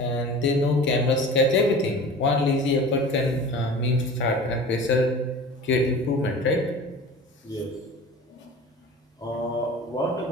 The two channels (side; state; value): both; normal; correlation 0.38